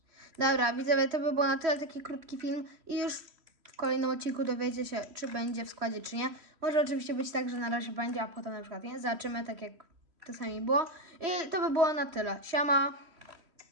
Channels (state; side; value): late; left; 3.1 ms